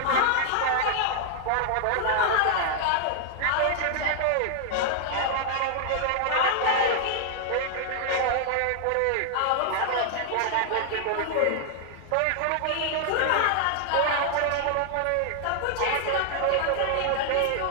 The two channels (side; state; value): both; different; correlation 0.00